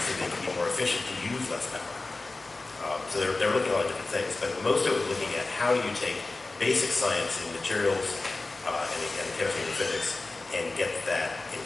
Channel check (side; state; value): right; quieter; 3.3 dB